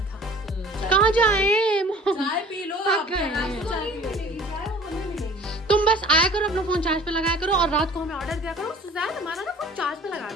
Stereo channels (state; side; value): normal; both; correlation 0.48